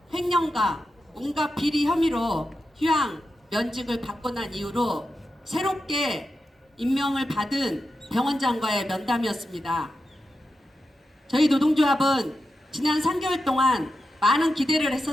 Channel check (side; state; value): both; normal; correlation 0.89